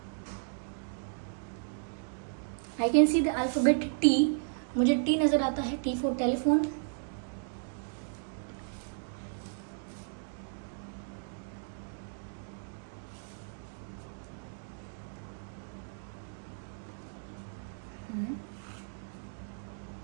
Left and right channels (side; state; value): left; silent; digital silence